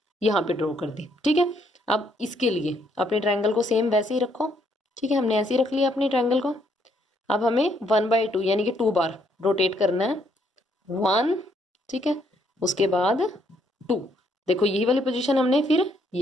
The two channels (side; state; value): both; normal; correlation 0.71